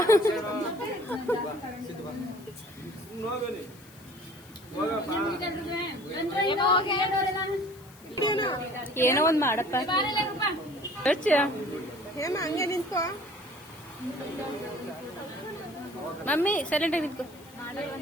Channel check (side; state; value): left; noise; hiss, 23 dB below the sound